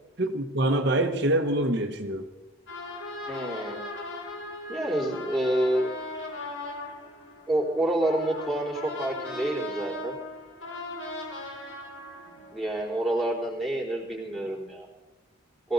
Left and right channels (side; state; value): both; normal; correlation 0.56